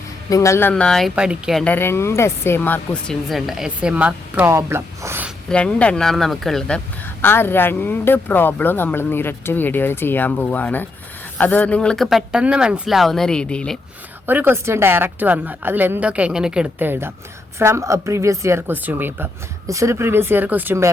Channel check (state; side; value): quieter; right; 3.0 dB